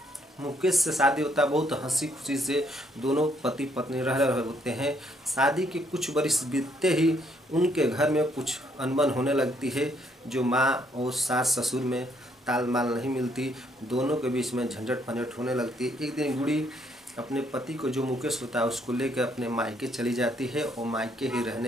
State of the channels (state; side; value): normal; both; correlation 0.70